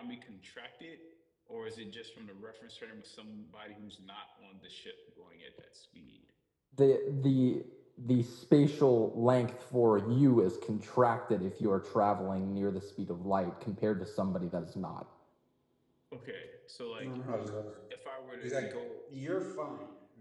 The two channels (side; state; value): both; identical; correlation 1.00